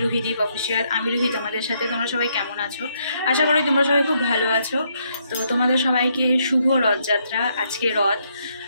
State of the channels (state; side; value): inverted; both; correlation -0.74